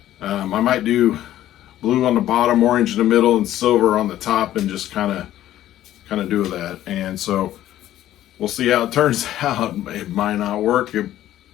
I might do blue on the bottom, orange in the middle, and silver on the top, and just kind of do that. And so we'll see how it turns out. It might not work. It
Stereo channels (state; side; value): quieter; right; 13.1 dB